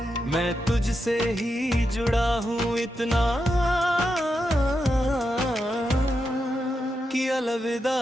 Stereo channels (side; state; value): both; normal; correlation 0.86